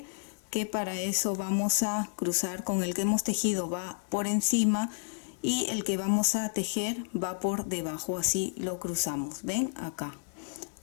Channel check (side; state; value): right; silent; 57 dB below the other